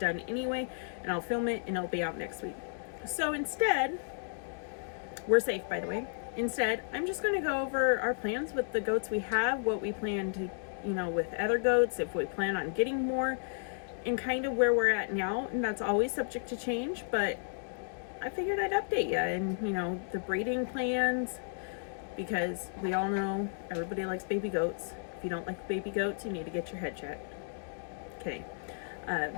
anyway, and I'll film it and it'll be out next week. So instead, we're safe, by the way. Instead, I'm just going to go over our plans with the goats we have, what we plan to, with other goats, if we plan on getting more, and kind of where we're at now. And that's always subject to change, but I figured I'd update you and, the breeding plans, because we all know everybody likes baby goats. If you don't like baby goats, you need to get your head checked. Okay.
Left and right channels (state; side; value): silent; right; digital silence